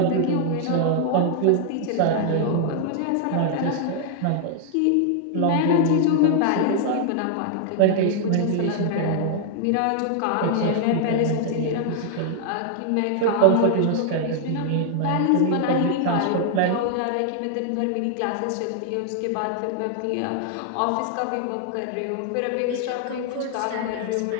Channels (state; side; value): different; both; correlation 0.00